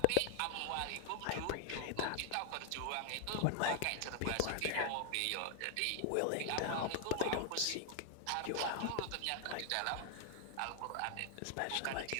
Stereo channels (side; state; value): both; different; correlation 0.00